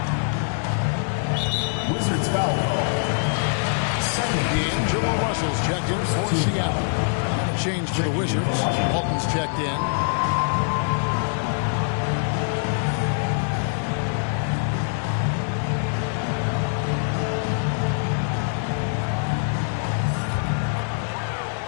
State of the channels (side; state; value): right; silent; 63 dB below the other